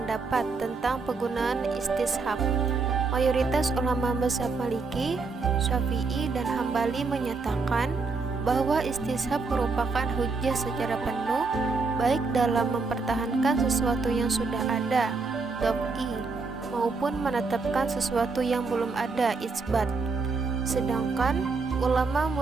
tentang penggunaan istishab. Mayoritas ulama mazhab Maliki, Syafi'i, dan Hambali menyatakan bahwa istishab merupakan hujjah secara penuh baik dalam mempertahankan sesuatu yang sudah ada, daf'i, maupun menetapkan sesuatu yang belum ada, isbat. Sedangkan ulama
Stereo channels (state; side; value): quieter; left; 4.3 dB